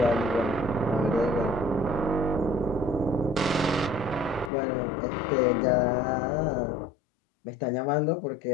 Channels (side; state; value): right; drops out; at 4.5 s